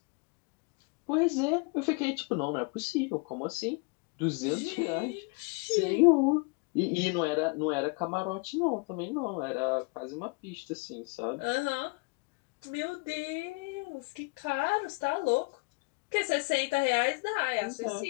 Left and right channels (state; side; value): quieter; right; 30.2 dB